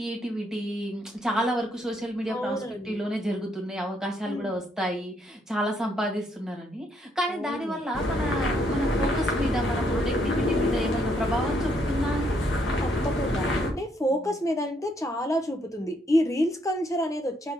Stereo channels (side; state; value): both; normal; correlation 0.72